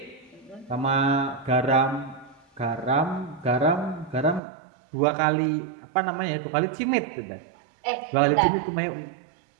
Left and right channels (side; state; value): left; drops out; at 4.4 s